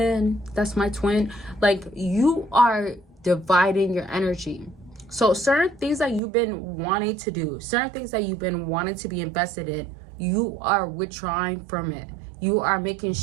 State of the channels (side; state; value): left; drops out; at 6.2 s